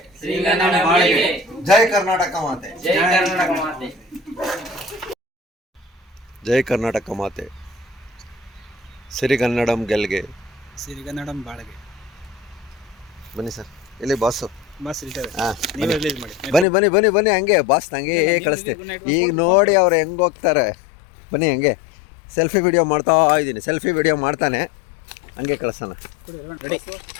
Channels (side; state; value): right; drops out; at 16.7 s